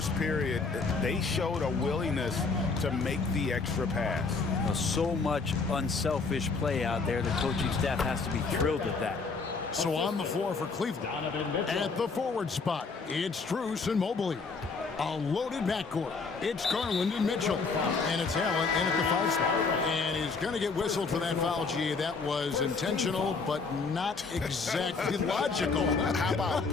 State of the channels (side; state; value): right; quieter; 4.5 dB